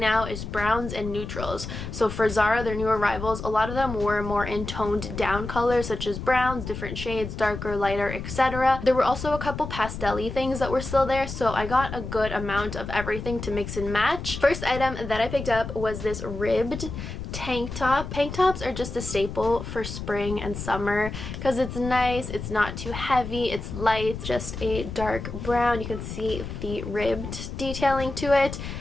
is browns and neutrals. So for Zara, their new arrivals, a lot of them were more in toned down colors such as browns, different shades, darker, lighter, etc. There were also a couple pastel-y things that were still there, so I got a good amount of everything to mix and match. First item that I picked up was this ribbed tank top. Tank tops are just a staple for spring and summer because it's nice, it's not too heavy, it's light, just a dark brown. You can see the ribbed detailing to it,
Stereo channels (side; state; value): left; noise; rumble, 8 dB below the sound